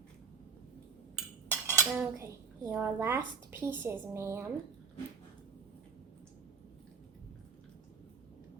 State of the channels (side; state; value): left; quieter; 5.3 dB